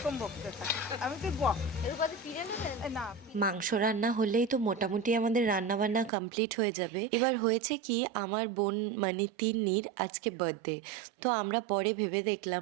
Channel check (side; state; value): left; drops out; at 6.1 s